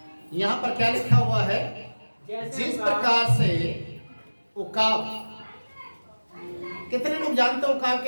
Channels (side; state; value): both; inverted; correlation -1.00